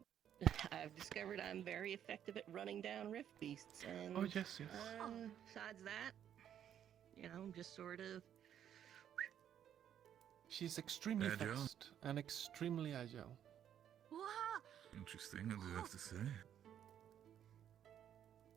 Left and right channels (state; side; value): quieter; left; 9.8 dB